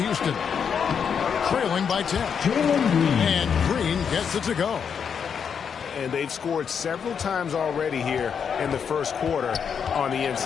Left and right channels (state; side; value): quieter; right; 7.0 dB